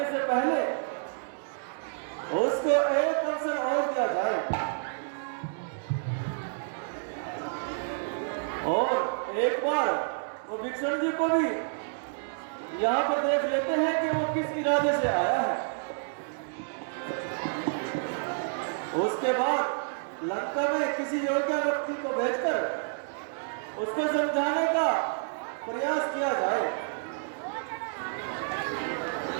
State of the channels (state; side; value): silent; left; digital silence